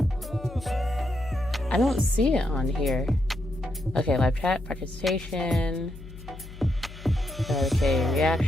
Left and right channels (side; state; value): left; noise; hum, 15 dB below the sound